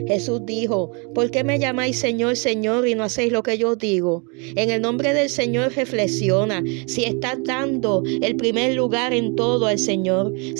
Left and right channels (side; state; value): left; quieter; 33.0 dB